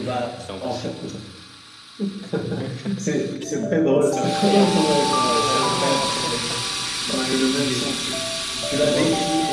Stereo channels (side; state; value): both; identical; correlation 1.00